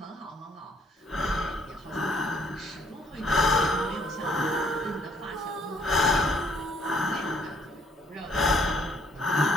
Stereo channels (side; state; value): both; normal; correlation 0.65